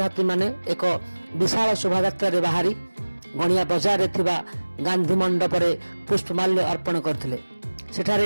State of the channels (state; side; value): inverted; both; correlation -1.00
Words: माने एक विशाल शोभायात्रा बाहरी गणिया बजार रे थिबा गांधी मंडप रे पुष्पमाल्य अर्पण करथिले।